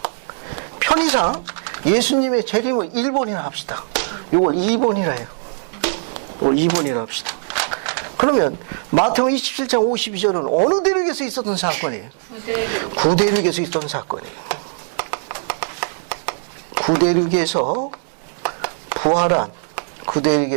편의상 예수님의 재림을 1번이나 합시다. 이걸 2번이라 해요. 이걸 2번이라 합시다. 그러면 마태복음 27장 52절은 어느 대륙에서 있었던 사건이에요? 구대륙에서 있었던 사건이에요. 구대륙에서 부활한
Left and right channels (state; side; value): silent; left; 65 dB below the other